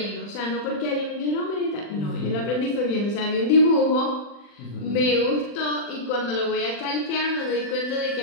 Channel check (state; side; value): late; right; 40 ms